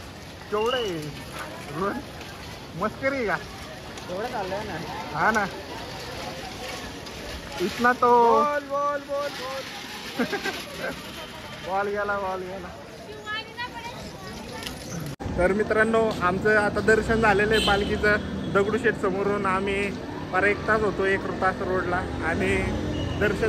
केवढे रोज मस्करी का एवढं चाललंय ना. हा ना, इतना तो बोल बोल बोल बोल बॉल गेला. तर मित्रांनो, आमचं आता दर्शन झालेलं आहे पालखीचं दगडूशेठ समोरून. आम्ही पर 1 तास होतो 1 तास रोडला आणि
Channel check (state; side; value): identical; both; correlation 1.00